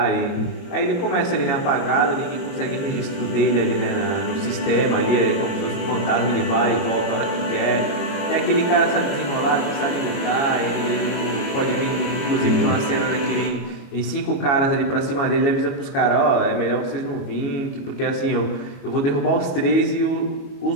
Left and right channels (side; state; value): right; late; 22 ms